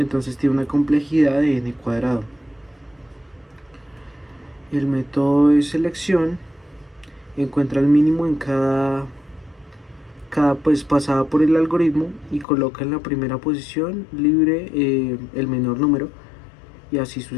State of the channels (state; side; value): drops out; right; at 12.5 s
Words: tiene una complejidad de n cuadrado. El método de selección encuentra el mínimo en cada pasada por el algoritmo y coloca en la primera posición libre el menor número y así